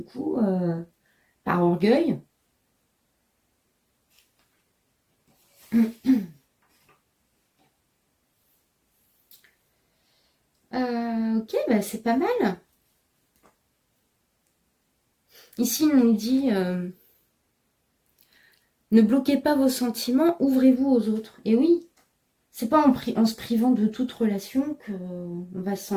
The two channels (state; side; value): identical; both; correlation 1.00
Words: coup, par orgueil, ok, bah c'est pas mal. Ici, on nous dit ne bloquez pas vos sentiments, ouvrez-vous aux autres. Et oui, c'est pas en se privant de toute relation qu'on va se